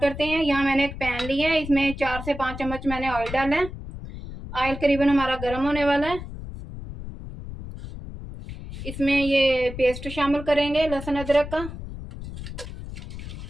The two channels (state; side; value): noise; left; rumble, 10 dB below the sound